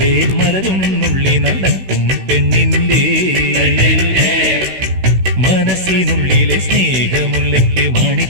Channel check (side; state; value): left; late; 16 ms